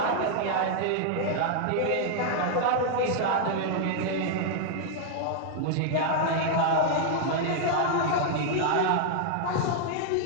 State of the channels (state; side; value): different; both; correlation 0.00